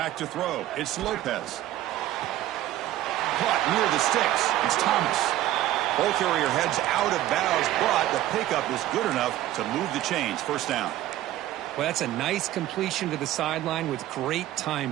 to throw. It's Lopez. Caught near the sticks. It's Thomas. Ball carrier heads out of bounds, but the pickup is good enough to move the chains. First down. Well, that's a nice completion to the sideline with great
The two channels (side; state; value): left; quieter; 14.1 dB